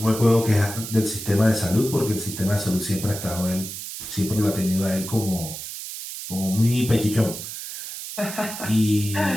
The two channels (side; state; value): right; noise; hiss, 9 dB below the sound